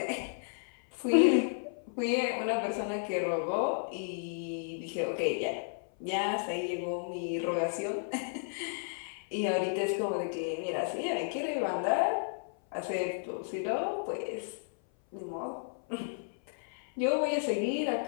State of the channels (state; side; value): silent; right; 56 dB below the other